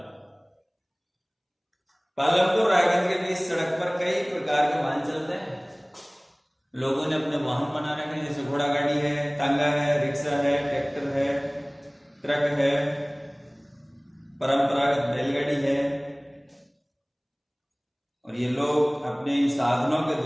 पालमपुर रायगंज के बीच सड़क पर कई प्रकार के वाहन चलते हैं। लोगों ने अपने वाहन बना रखे हैं, जैसे घोड़ा गाड़ी है, तांगा है, रिक्शा है, ट्रैक्टर है, ट्रक है, परंपरागत बैलगाड़ी है। और ये लोग अपने इन साधनों के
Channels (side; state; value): both; identical; correlation 1.00